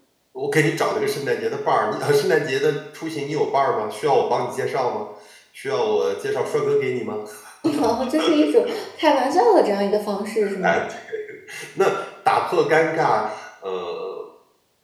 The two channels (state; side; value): identical; both; correlation 1.00